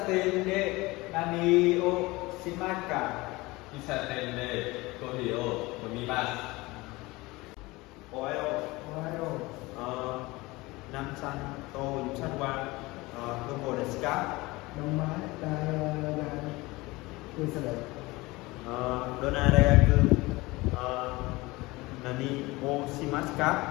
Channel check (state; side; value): quieter; right; 21.8 dB